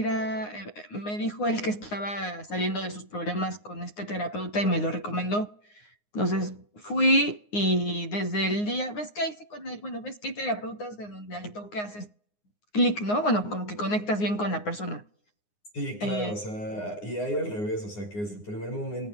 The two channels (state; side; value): late; right; 9.6 ms